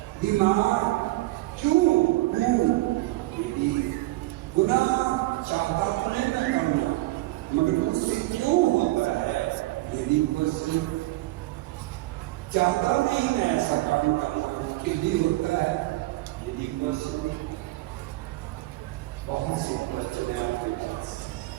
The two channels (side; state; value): left; quieter; 19.2 dB